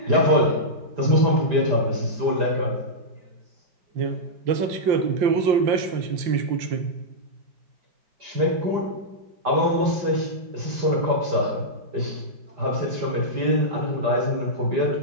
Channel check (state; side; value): late; left; 5.0 ms